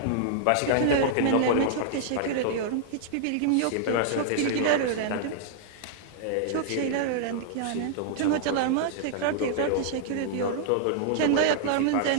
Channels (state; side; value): different; both; correlation -0.01